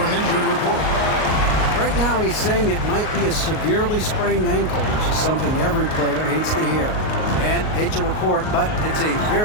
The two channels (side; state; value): right; late; 38 ms